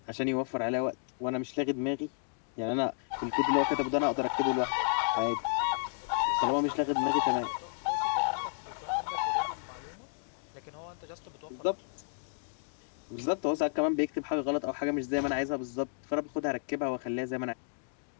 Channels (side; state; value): right; silent; digital silence